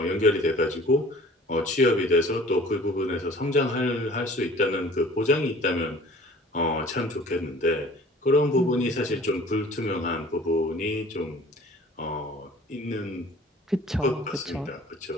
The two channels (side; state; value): both; normal; correlation 0.48